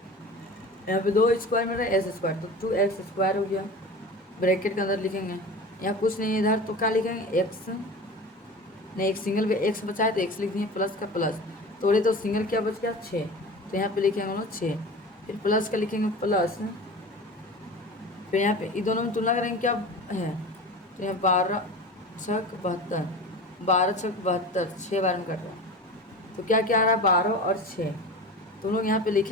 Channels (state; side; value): normal; both; correlation 0.34